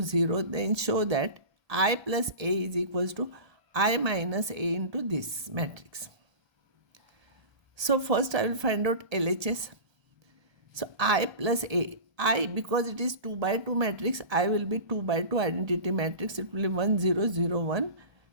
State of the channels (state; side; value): late; left; 1.3 ms